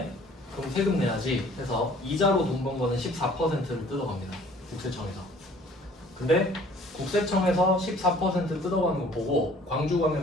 그럼 세금 내야지 해서 이자로 돈 번 거는 14%를 뜯어갑니다. 국세청에서. 근데 국세청에서 14% 뜯어가는 거 보고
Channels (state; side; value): normal; both; correlation 0.54